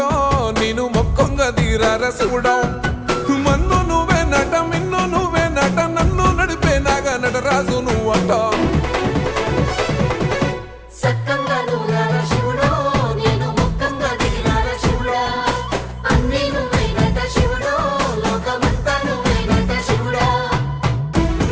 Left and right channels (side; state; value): both; identical; correlation 1.00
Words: నేను మొక్కంగా తీరార శివుడో మన్ను నువ్వే నట మిన్ను నువ్వే నట నన్ను నడిపే నాగా నటరాజు నువ్వట